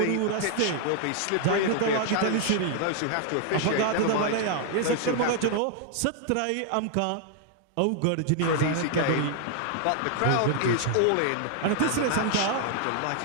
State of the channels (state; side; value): different; both; correlation 0.00